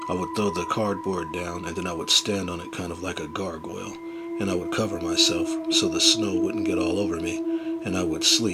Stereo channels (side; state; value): both; identical; correlation 1.00